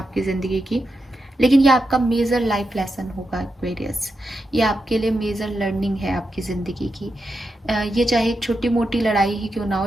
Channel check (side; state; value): both; normal; correlation 0.87